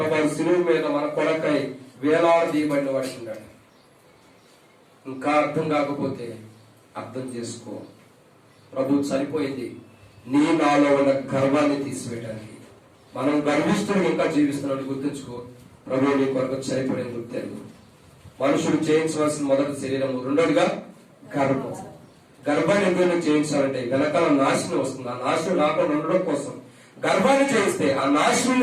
శిలువ మీద మన కొరకై వేలాడదీయబడిన వాడికి ఉన్నాడు. ఇంకా అర్థం కాకపోతే అర్థం చేసుకో, ప్రభు చనిపోయింది నీ నాలో ఉన్న గర్వాన్ని తీసివేయడానికి. మనం గర్విస్తున్న ఇంకా జీవిస్తున్నాడు గుర్తుంచుకో. ప్రభు నీ కొరకు చనిపోయిన గుర్తెరుగు. మనుషులు చేయించవలసిన మొదటి శరీరము, రెండోదిగా గర్భం. గర్భాన్ని ఎందుకు చేయించాలంటే వెనకాల నాశనం వస్తుంది. ఆ నాశనం రాకుండా ఉండడం కోసం గర్భాన్ని చేయిస్తే ఆ నాశనం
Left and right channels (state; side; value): identical; both; correlation 1.00